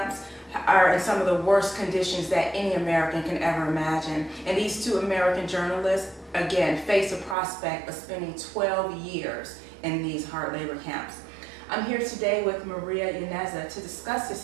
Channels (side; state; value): left; drops out; at 7.4 s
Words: are in some of the worst conditions that any American can ever imagine. And these two American journalists, again, face a prospect of spending 12 years in these hard labor camps. I'm here today with Maria Yaneza to discuss